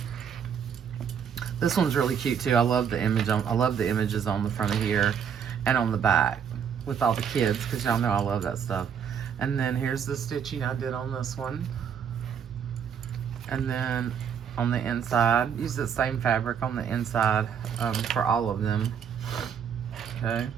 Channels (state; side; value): quieter; left; 7.7 dB